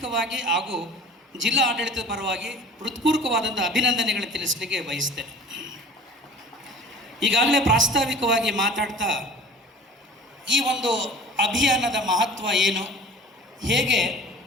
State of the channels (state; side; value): normal; both; correlation 0.42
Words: ಹಾಗೂ ಜಿಲ್ಲಾ ಆಡಳಿತದ ಪರವಾಗಿ ಹೃತ್ಪೂರ್ವಕವಾದಂಥ ಅಭಿನಂದನೆಗಳನ್ನು ತಿಳಿಸಲಿಕ್ಕೆ ಬಯಸ್ತೇನೆ. ಈಗಾಗಲೇ ಪ್ರಾಸ್ತಾವಿಕವಾಗಿ ಮಾತಾಡ್ತಾ ಈ ಒಂದು ಅಭಿಯಾನದ ಮಹತ್ವ ಏನು, ಹೇಗೆ